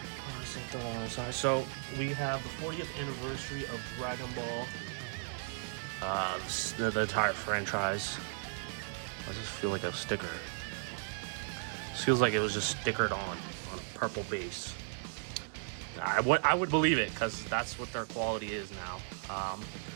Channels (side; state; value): left; silent; 54 dB below the other